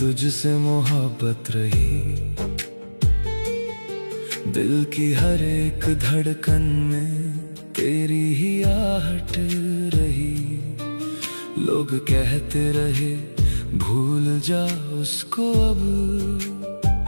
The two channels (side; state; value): both; inverted; correlation -1.00